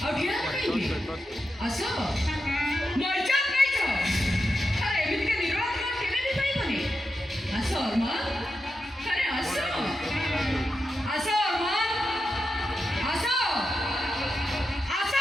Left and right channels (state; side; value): normal; both; correlation 0.88